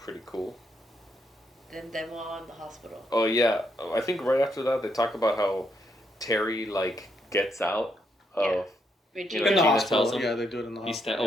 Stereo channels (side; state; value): both; normal; correlation 0.77